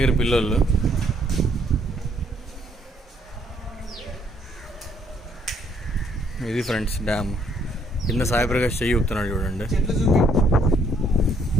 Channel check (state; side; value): normal; both; correlation 0.67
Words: పిల్లలు ఇది ఫ్రెండ్స్ డ్యామ్ కింద సాయిప్రకాష్ చెయ్యి ఊపుతున్నాడు చూడండి.